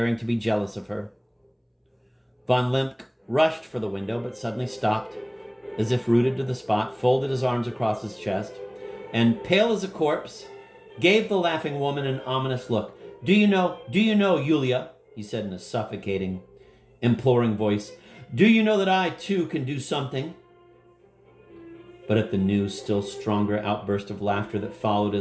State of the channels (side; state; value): both; identical; correlation 1.00